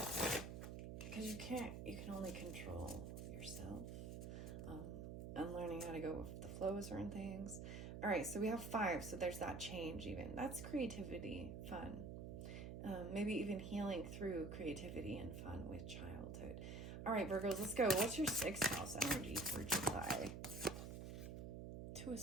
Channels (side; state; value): right; noise; hum, 7 dB below the sound